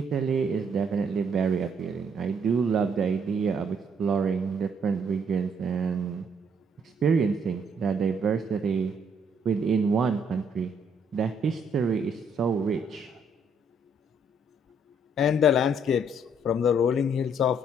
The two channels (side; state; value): both; normal; correlation 0.68